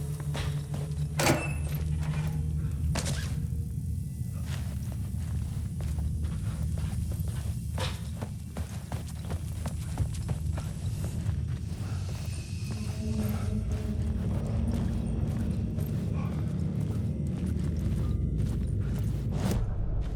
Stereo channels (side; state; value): both; identical; correlation 1.00